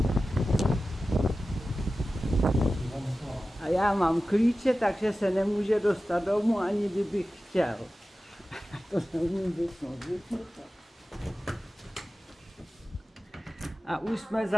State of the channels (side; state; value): both; normal; correlation 0.95